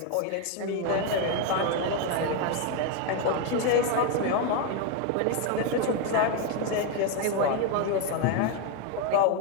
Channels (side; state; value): both; different; correlation 0.01